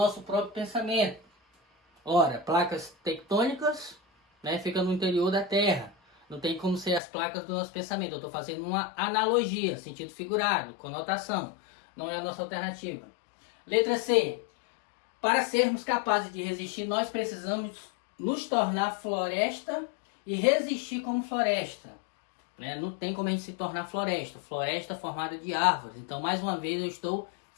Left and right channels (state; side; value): drops out; right; at 7.0 s